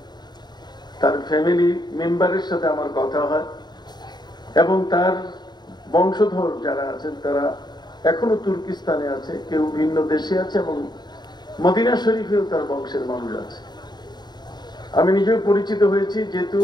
তার ফ্যামিলি মেম্বারের সাথে আমার কথা হয়, এবং তার বংশধর যারা আছেন তারা এখনো তুর্কিস্তানে আছে, কেউ ভিন্ন দেশে আছে, এবং মদিনা শরীফেও তার বংশের মানুষ আছে। আমি নিজেও পরিচিত হয়েছি, যেহেতু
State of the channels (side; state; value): right; late; 0.21 ms